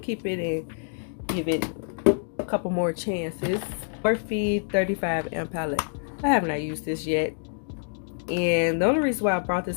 it and give it a couple more chances. Morphe 35M palette. I have not used this yet, and the only reason why I brought this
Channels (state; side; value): silent; right; digital silence